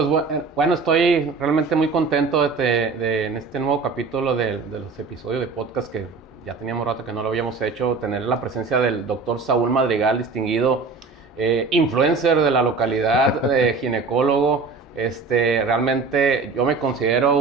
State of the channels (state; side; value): quieter; left; 4.4 dB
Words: bueno, estoy realmente muy contento en este nuevo capítulo de los episodios de podcast que ya teníamos rato que no lo habíamos hecho, tener la presencia del doctor Saúl Madrigal, distinguido influencer de la localidad, ginecólogo. Realmente yo me considero